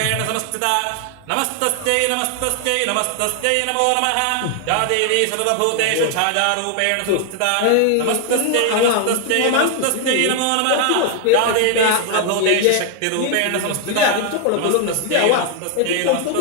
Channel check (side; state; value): both; different; correlation 0.00